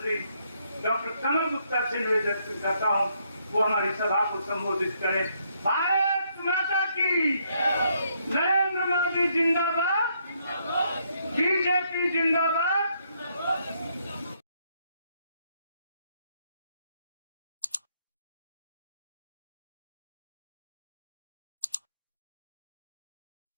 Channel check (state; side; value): inverted; both; correlation -0.73